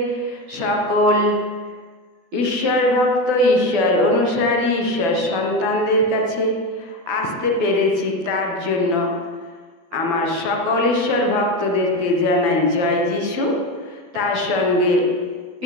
সকল ঈশ্বর ভক্ত, ঈশ্বর অনুসারী, ঈশ্বর সন্তানদের কাছে আসতে পেরেছি। তার জন্য আমার সকল ঈশ্বর ভক্তদেরকে জানাই জয় যিশু। তার সঙ্গে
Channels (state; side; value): late; left; 12 ms